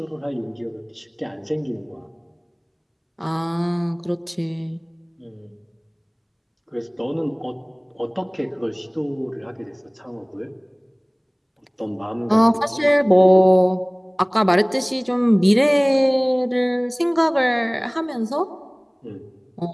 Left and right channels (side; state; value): both; identical; correlation 1.00